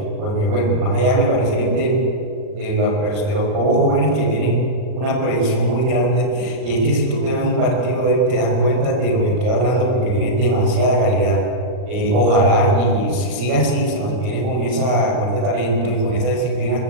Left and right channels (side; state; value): left; late; 39 ms